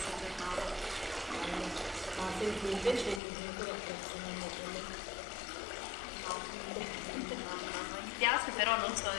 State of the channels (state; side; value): drops out; right; at 3.2 s